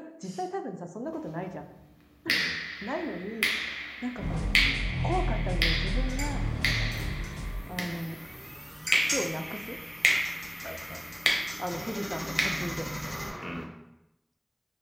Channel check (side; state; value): both; identical; correlation 1.00